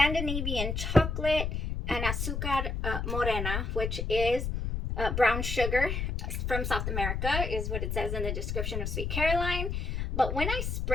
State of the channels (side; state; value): left; noise; rumble, 2 dB below the sound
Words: chocolate and azúcar morena, which is brown sugar from South America, is what it says in the description of Sweet Caroline. But when I